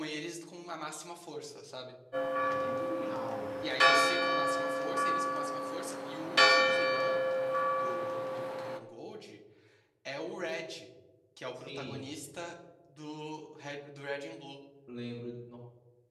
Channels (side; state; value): both; identical; correlation 1.00